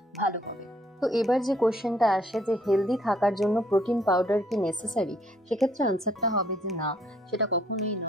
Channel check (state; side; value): normal; both; correlation 0.65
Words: ভালো হবে। তো এবার যে কোয়েশ্চেনটা আসে যে হেলদি থাকার জন্য প্রোটিন পাউডার কি নেসেসারি, সেক্ষেত্রে আনসারটা হবে যে না, সেটা কখনোই